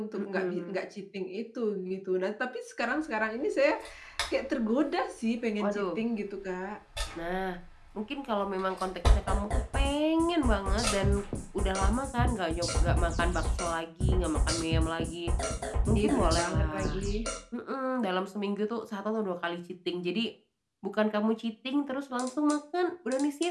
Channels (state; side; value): identical; both; correlation 1.00